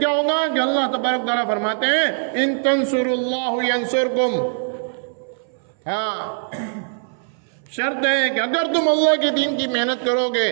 کہ اللہ تبارک تعالیٰ فرماتے ہیں ان تنصروا اللہ ینصرکم. ہاں شرط ہے کہ اگر تم اللہ کے دین کی محنت کرو گے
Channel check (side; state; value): left; silent; 61 dB below the other